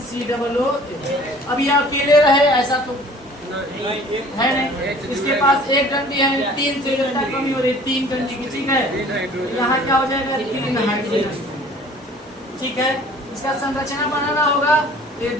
COOH। अब ये अकेले रहे ऐसा तो है नहीं, इसके पास एक डंडी है, तीन से कमी हो रही है, तीन डंडी की, ठीक है। यहाँ क्या हो जाएगा, तीन हाइड्रोजन, ठीक है। इसका संरचना बनाना होगा, ये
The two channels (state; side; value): normal; both; correlation 0.50